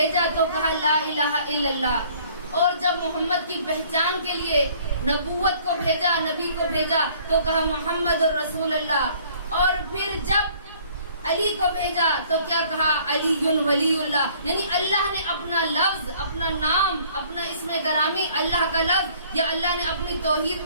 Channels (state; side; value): inverted; both; correlation -0.57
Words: تو کہا لا الہ الا اللہ, اور جب محمد کی پہچان کے لیے نبوت کو بھیجا, نبی کو بھیجا تو کہا محمد الرسول اللہ. اور پھر جب علی کو بھیجا تو کیا کہا؟ علی ولی اللہ، یعنی اللہ نے اپنا لفظ، اپنا نام، اپنا اسم گرامی اللہ کا لفظ یا اللہ نے اپنی توحید